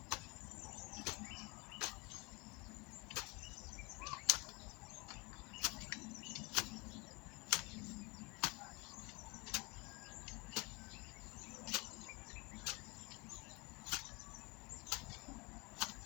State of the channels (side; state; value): right; quieter; 27.0 dB